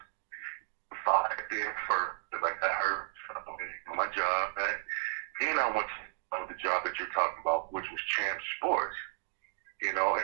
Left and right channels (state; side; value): silent; left; digital silence